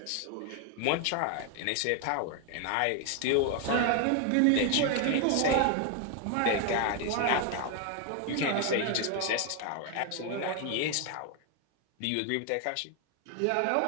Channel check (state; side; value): different; both; correlation 0.01